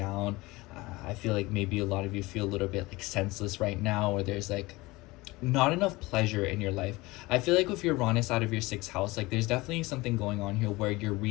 I feel like maybe a lot of you feel a little bit like senseless right now, or there's like not enough pleasure in your life. I feel like with your Uranus out of your 6th house, like there's definitely something going on here where you're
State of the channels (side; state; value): right; quieter; 21.5 dB